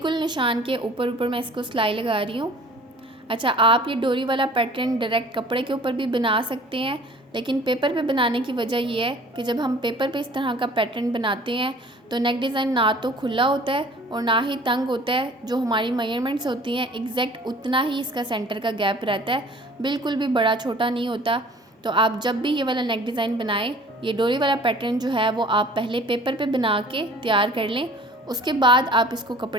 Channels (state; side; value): normal; both; correlation 0.49